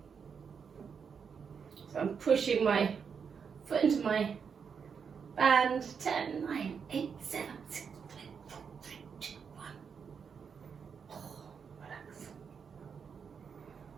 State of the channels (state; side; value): quieter; left; 6.4 dB